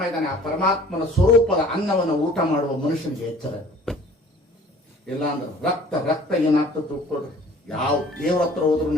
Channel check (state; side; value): normal; both; correlation 0.50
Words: ಇದ್ದಾನೆ. ಆ ಪರಮಾತ್ಮನ ಸ್ವರೂಪದ ಅನ್ನವನ್ನು ಊಟ ಮಾಡುವ ಮನುಷ್ಯನಿಗೆ ಎಚ್ಚರ. ಇಲ್ಲ ಅಂದ್ರೆ ರಕ್ತ ರಕ್ತ ಏನಾಗ್ತದೆ ತಿಳ್ಕೊಳ್ರಿ. ಯಾವ ದೇವ್ರ ಹತ್ರ ಹೋದ್ರು